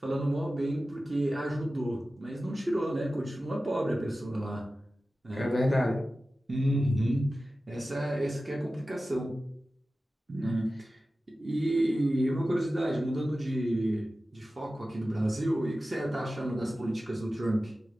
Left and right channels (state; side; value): normal; both; correlation 0.95